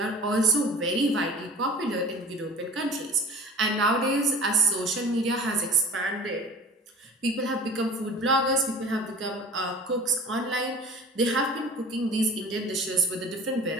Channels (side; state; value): both; normal; correlation 0.42